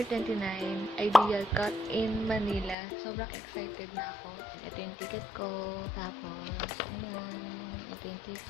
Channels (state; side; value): drops out; right; at 2.8 s